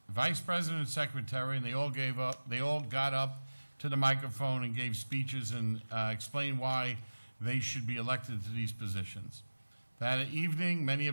vice president, and secretary, and they all got up to the microphone and gave speeches and explained why they should be elected to these positions. That evening, many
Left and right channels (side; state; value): both; inverted; correlation -1.00